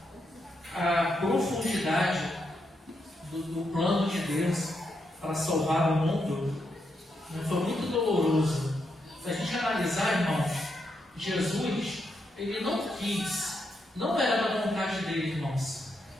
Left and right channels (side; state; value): both; normal; correlation 0.82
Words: a profundidade do plano de Deus para salvar o mundo foi muito doloroso. Se a gente analisar, irmãos, Jesus, ele não quis, não era da vontade dele, irmãos,